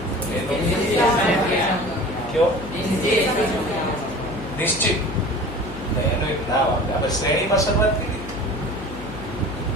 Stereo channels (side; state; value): left; noise; hum, 11 dB below the sound